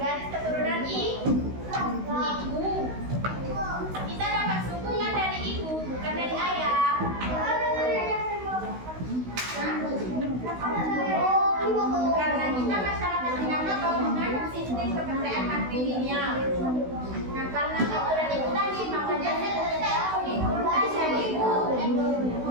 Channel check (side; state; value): left; late; 16 ms